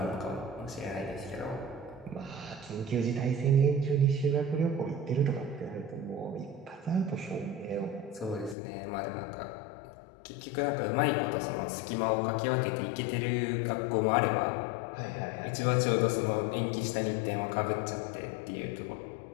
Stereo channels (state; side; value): drops out; right; at 8.6 s